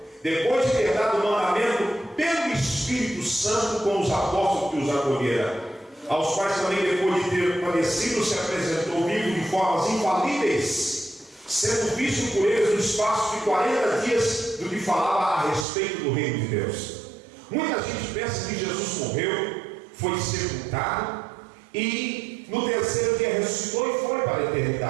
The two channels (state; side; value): drops out; left; at 15.7 s